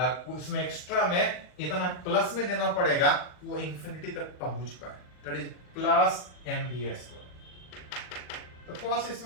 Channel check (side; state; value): right; late; 39 ms